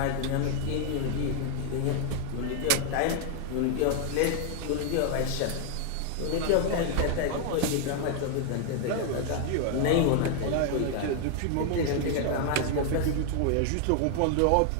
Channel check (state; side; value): different; both; correlation 0.00